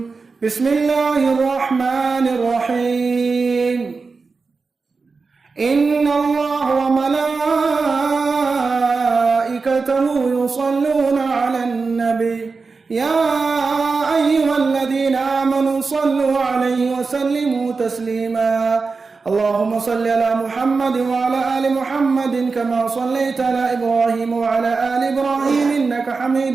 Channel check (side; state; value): left; quieter; 4.4 dB